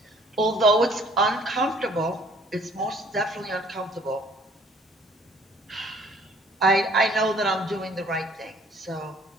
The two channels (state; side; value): normal; both; correlation 0.57